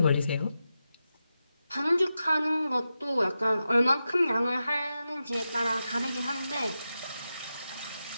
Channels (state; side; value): inverted; both; correlation -0.90